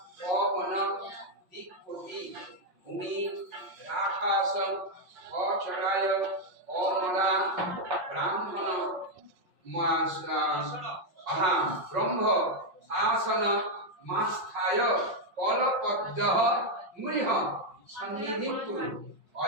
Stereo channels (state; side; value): late; left; 5.7 ms